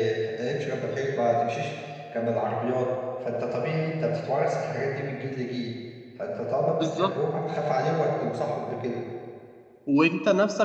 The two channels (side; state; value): both; identical; correlation 1.00